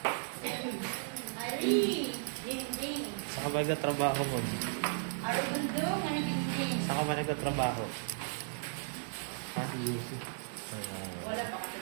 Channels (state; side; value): silent; left; digital silence